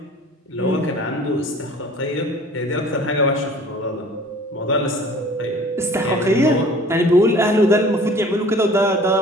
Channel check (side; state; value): both; normal; correlation 0.48